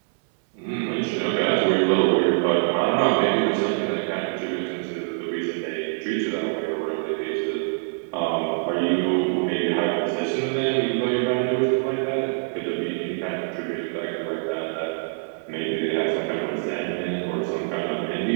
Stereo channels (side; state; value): left; silent; 62 dB below the other